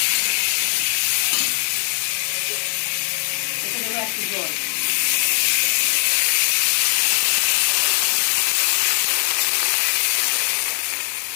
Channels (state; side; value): silent; right; 65 dB below the other